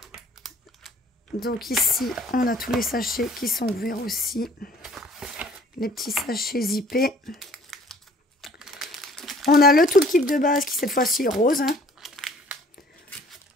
Donc ici, on a tous les sachets qui sont ouverts aussi. Les petits sachets zippés. On a le toolkit de base qui cette fois-ci est rose. Hein.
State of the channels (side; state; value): both; normal; correlation 0.54